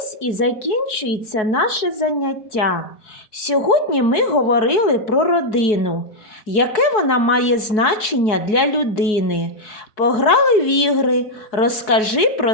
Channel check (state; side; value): late; right; 4.7 ms